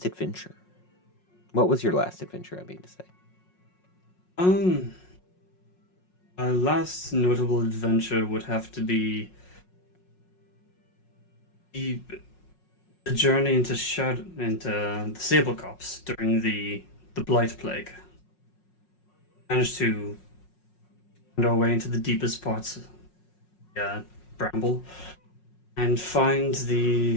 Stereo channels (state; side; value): late; right; 5.5 ms